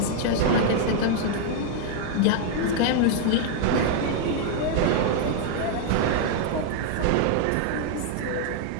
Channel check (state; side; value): different; both; correlation 0.00